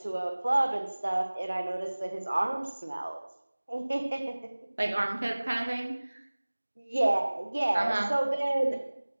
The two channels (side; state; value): both; inverted; correlation -1.00